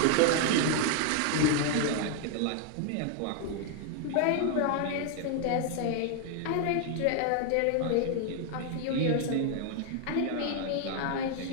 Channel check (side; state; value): both; different; correlation 0.00